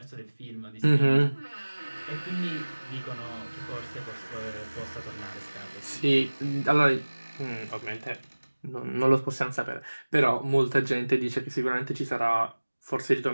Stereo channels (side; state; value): both; inverted; correlation -1.00